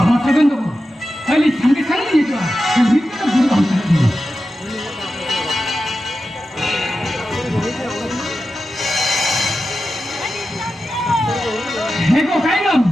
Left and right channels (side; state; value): both; normal; correlation 0.91